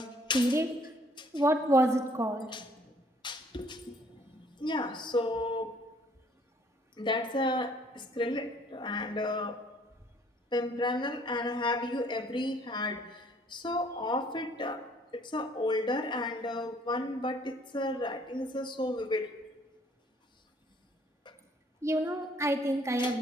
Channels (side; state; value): both; normal; correlation 0.61